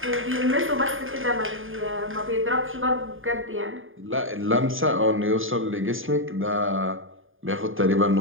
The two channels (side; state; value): left; late; 0.59 ms